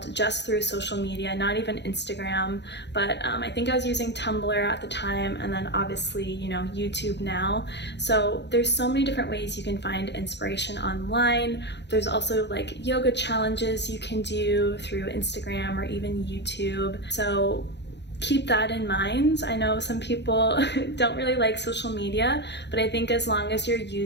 just through social media, not even Instagram, but I think I was using Tumblr at the time, and then obviously, you know, YouTube now. So there's so many different ways you can find inspiration online. There's also like yoga challenges you can do through Instagram or even YouTube. So keep that in mind. I know some people don't really like social media, but I think as long as you're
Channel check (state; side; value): late; right; 0.50 ms